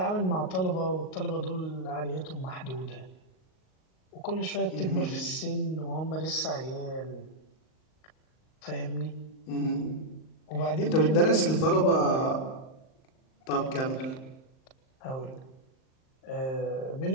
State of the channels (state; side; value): late; right; 38 ms